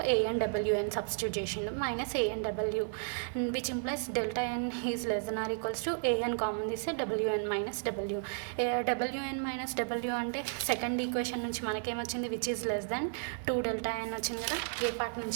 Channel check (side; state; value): left; silent; digital silence